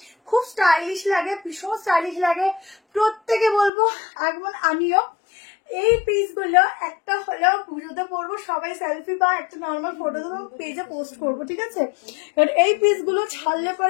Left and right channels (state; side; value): drops out; right; at 3.7 s